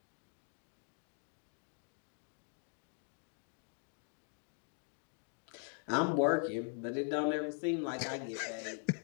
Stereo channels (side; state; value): right; silent; 50 dB below the other